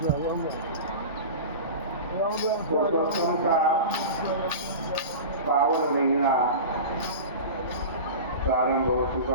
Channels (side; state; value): both; inverted; correlation -0.31